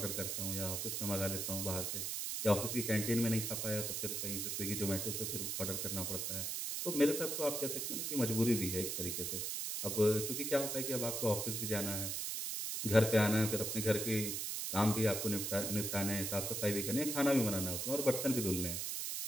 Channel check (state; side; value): noise; right; hiss, 2 dB below the sound